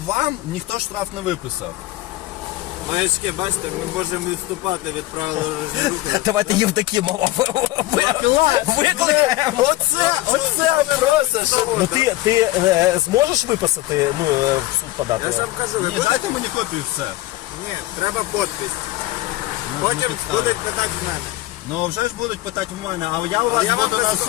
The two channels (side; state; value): right; quieter; 17.4 dB